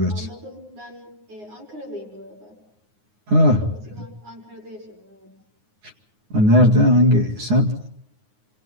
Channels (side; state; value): left; late; 9.6 ms